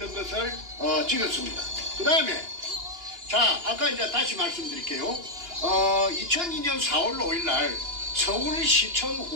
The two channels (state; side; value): late; left; 2.9 ms